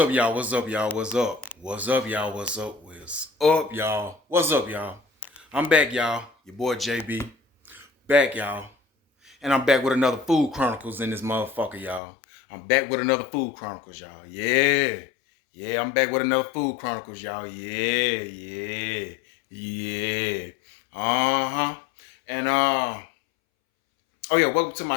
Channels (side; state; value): right; drops out; at 12.0 s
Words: y'all? What's up, y'all? What's up? What's up, y'all? What's up? What's up, y'all? What's up, y'all? I'm back, y'all. Your boy JB. Back, y'all. And I'm back with another Food Chronicles in this motherfucker, y'all. I'm back with another Food Chronicles, y'all. Yeah. Yeah, I'm back with another Food Chronicles, y'all. Yeah. Uh-huh. And oh yeah, welcome to